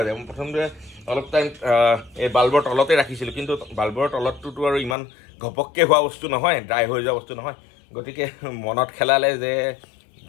যায় মই প্ৰথমতে অলপ টাইম এই বাল্বৰ তলতে ৰাখিছিলোঁ কিন্তু বাল্বৰ তলতটোতো আৰু ইমান ঘপককৈ হোৱা বস্তু নহয় ড্ৰাই হৈ যোৱা বস্তু নহয় গতিকে মনত খেলালে যে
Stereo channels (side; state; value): right; drops out; at 5.0 s